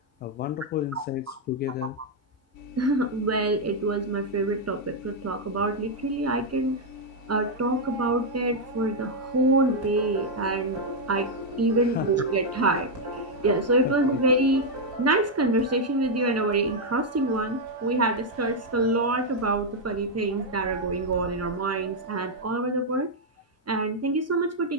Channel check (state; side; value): normal; both; correlation -0.01